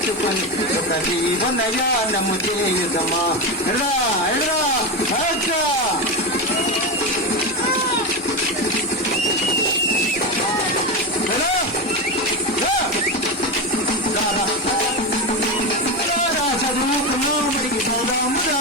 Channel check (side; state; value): both; normal; correlation 0.16